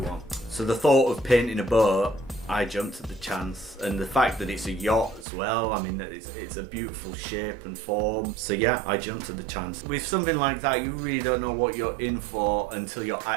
So the thought of painting a boat, I jumped at the chance, and the fact that it's a yacht as well, I mean, it's a beautiful shape and form. So yeah, I jumped at the chance. With something like that, you really don't know what you're in for until you're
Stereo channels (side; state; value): left; drops out; at 5.2 s